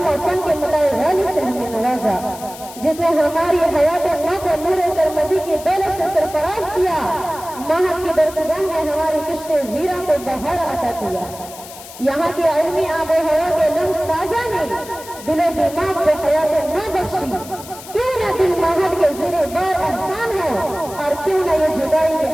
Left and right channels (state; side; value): noise; left; hiss, 16 dB below the sound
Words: و فن کے متاع غالی سے ہمیں نوازا، جس نے ہماری حیات نو کو نور سرمدی کی دولت سے سرفراز کیا. معہد کی درسگاہ نے ہماری کشت ویراں کو بہار عطا کیا. یہاں کی علمی آب و ہوا کے لمس تازہ نے دل و دماغ کو حیات نو بخشی. کیوں نہ دل معہد کے زیر بار احسان ہو اور کیوں نہ یہ جدائی کے